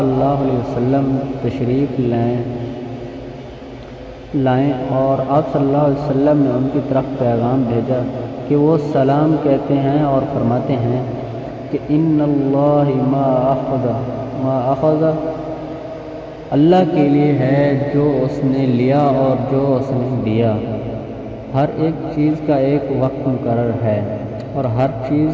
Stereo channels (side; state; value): both; identical; correlation 1.00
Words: اللہ علیہ وسلم تشریف لائیں اور آپ صلی اللہ علیہ وسلم نے ان کی طرف پیغام بھیجا کہ وہ سلام کہتے ہیں اور فرماتے ہیں کہ ان اللہ ما اخذ، اللہ کے لیے ہے جو اس نے لیا اور جو اس نے دیا۔ ہر ایک چیز کا ایک وقت مقرر ہے اور ہر